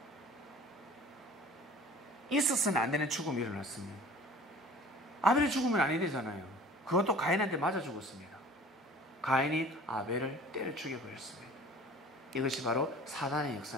있었으면 안 되는 죽음이 일어났습니다. 아벨이 죽으면 아니 되잖아요. 그것도 가인한테 맞아 죽었습니다. 가인이 아벨을 때려 죽여버렸습니다. 이것이 바로 사단의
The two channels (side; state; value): both; normal; correlation 0.45